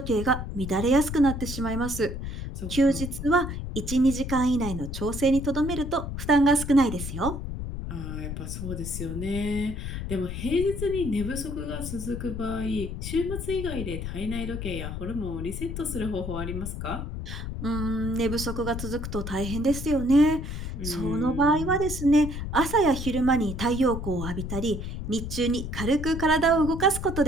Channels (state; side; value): noise; left; rumble, 6 dB below the sound